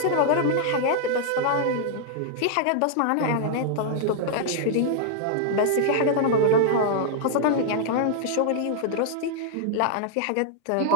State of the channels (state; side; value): different; both; correlation 0.00